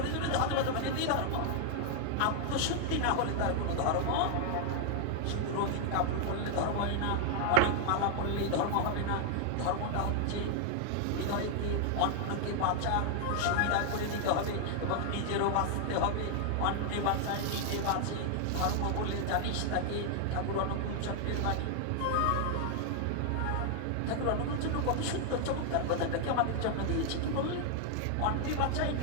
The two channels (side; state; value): both; different; correlation 0.00